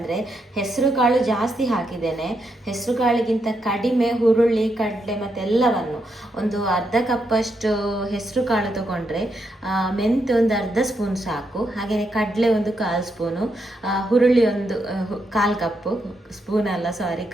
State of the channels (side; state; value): both; normal; correlation 0.81